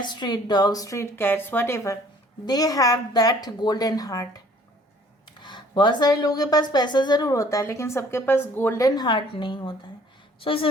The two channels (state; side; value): normal; both; correlation 0.56